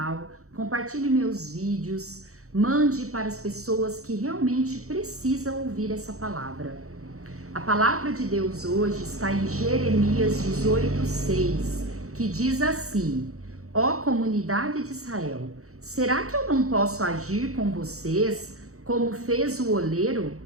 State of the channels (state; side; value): late; left; 0.64 ms